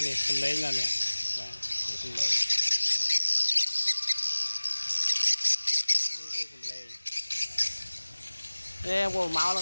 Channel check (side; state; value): both; inverted; correlation -1.00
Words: នេះសំឡេងនៅនេះបាទនេះសំឡេងនេះសំឡេងនេះបងមកឡើ